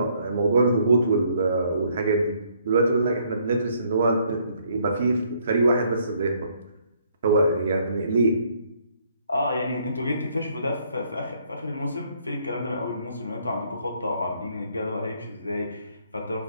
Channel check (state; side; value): inverted; both; correlation -0.67